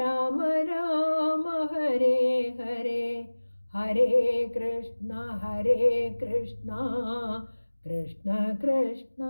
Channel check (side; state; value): both; inverted; correlation -1.00